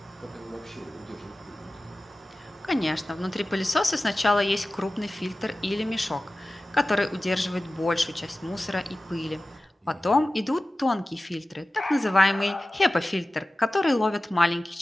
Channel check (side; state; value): both; normal; correlation 0.96